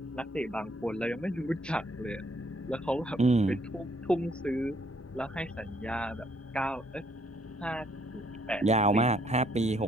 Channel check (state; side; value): normal; both; correlation 0.67